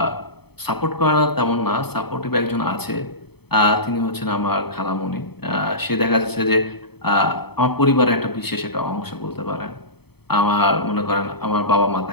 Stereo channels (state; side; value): late; right; 0.97 ms